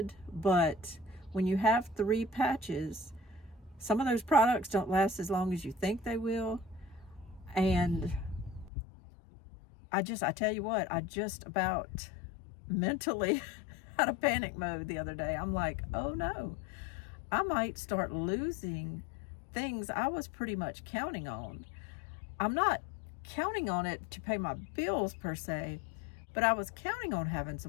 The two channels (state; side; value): drops out; right; at 8.7 s